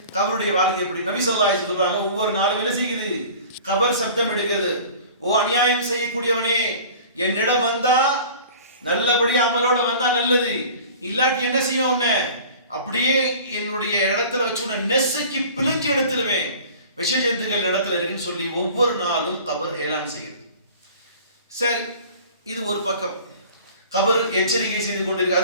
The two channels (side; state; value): both; inverted; correlation -0.44